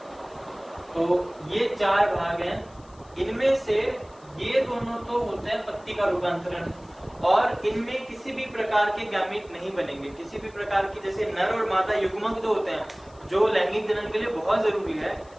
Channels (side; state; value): left; noise; hiss, 29 dB below the sound